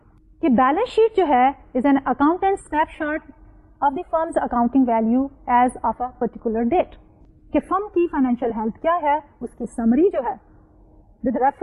कि बैलेंस शीट जो है is an accountant snapshot of the firm's accounting value as of a particular date. कि फर्म की फाइनेंशियल हेल्थ क्या है उसकी समरी जो है with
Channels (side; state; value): both; identical; correlation 1.00